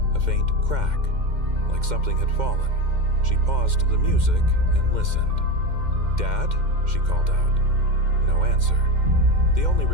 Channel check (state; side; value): late; left; 2.1 ms